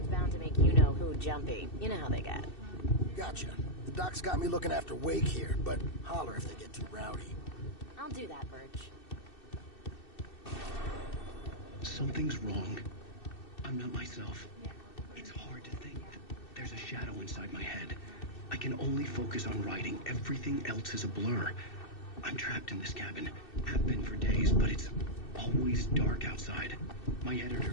bound to make you-know-who jumpy. You know how they get. Gotcha. The doc's got me looking after Wake here, but holler if they get too rowdy. I'll do that, Birch. Something's wrong. I'm not myself. It's hard to think. There's a shadow inside my head. I can only focus on writing. Everything else is a blur. I'm trapped in this cabin. Have been for days, but it's always dark outside. My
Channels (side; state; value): right; late; 2.6 ms